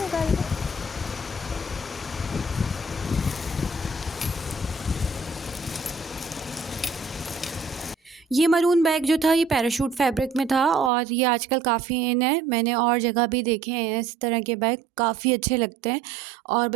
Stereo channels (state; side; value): drops out; left; at 10.9 s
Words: निकाल के? ये मरून बैग जो था ये पैराशूट फैब्रिक में था और ये आजकल काफ़ी इन है। मैंने और जगह भी देखे हैं इस तरह के बैग, काफ़ी अच्छे लगते हैं और